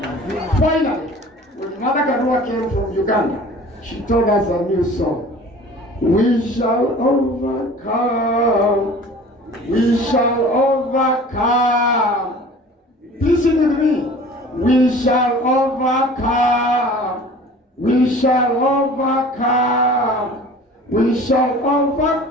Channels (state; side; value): normal; both; correlation 0.44